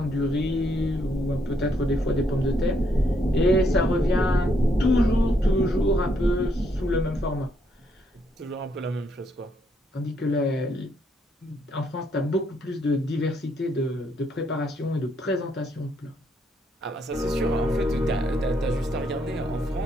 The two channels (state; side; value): normal; both; correlation 0.73